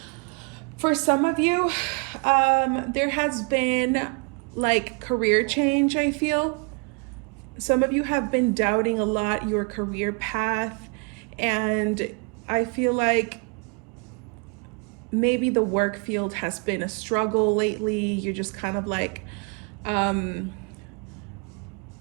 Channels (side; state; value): left; quieter; 33.8 dB